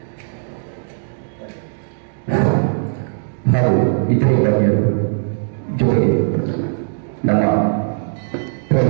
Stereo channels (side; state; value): left; silent; digital silence